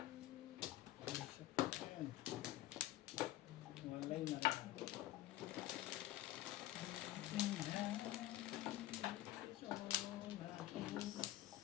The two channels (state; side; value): quieter; right; 14.8 dB